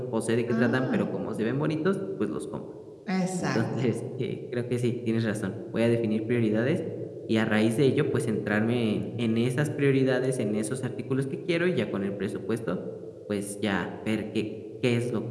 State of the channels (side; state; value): both; identical; correlation 1.00